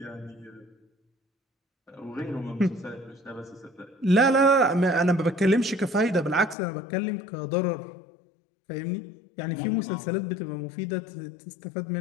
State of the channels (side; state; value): right; drops out; at 6.6 s